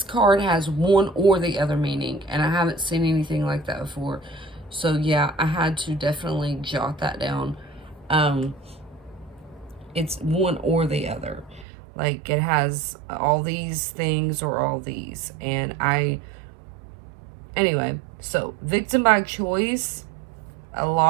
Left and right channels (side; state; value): left; drops out; at 11.7 s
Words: card has one or the other meaning. And I haven't seen anything like that before. So yeah, I had to definitely jot that down. It's one or the other. Like, it has all these things or all these. And anyway, so victim by choice, a